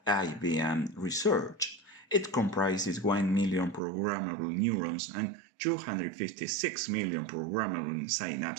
IBM Research. It comprises 1 million programmable neurons and 256 million programmable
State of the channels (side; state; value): left; drops out; at 3.8 s